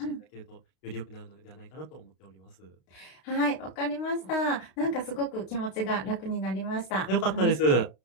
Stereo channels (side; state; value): right; late; 32 ms